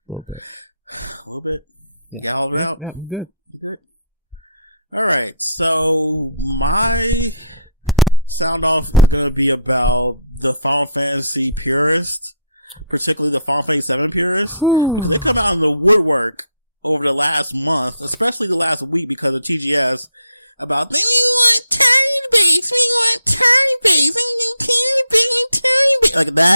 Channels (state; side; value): inverted; both; correlation -0.68